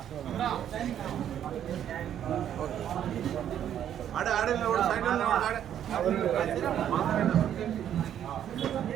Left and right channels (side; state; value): left; quieter; 10.1 dB